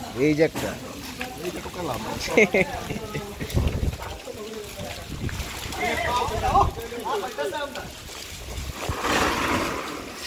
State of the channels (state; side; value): identical; both; correlation 1.00